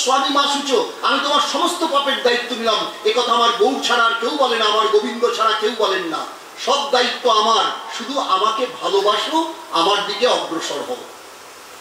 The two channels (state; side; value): identical; both; correlation 1.00